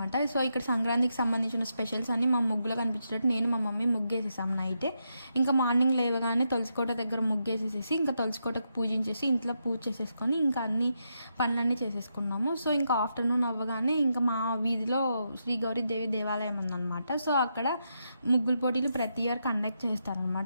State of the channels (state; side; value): inverted; both; correlation -0.83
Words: సో ఇక్కడ సంక్రాంతికి సంబంధించిన స్పెషల్స్ అన్ని మా ముగ్గులో కనిపించేటట్టు నేను మా మమ్మీ ముగ్గేసేసాం నైటే. ఇంకా మార్నింగ్ లేవగానే తులసికోట దగ్గర ముగ్గేసేసేసి ఇంకా తులసికోటకు పూజించేసి ఇంట్లో పూజ చేసేసుకొని ఇంకా అన్ని పనులన్నీ చేసేసుకున్నాము. సో ఇంకా ఆఫ్టర్నూన్ అవ్వగానే ఇంకా మా వీధిలో శ్రీ గౌరీదేవి దేవాలయం ఉందన్నమాట. సో అక్కడ ముగ్గుల పోటీలు ప్రతి ఇయర్ కండక్ట్